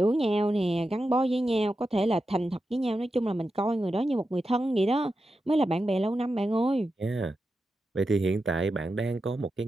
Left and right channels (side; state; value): both; normal; correlation 0.90